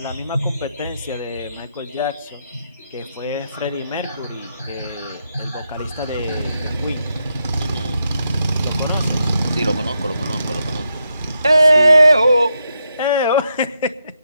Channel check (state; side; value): inverted; both; correlation -0.82